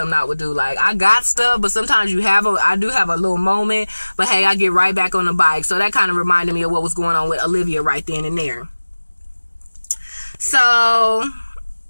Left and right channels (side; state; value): both; inverted; correlation -1.00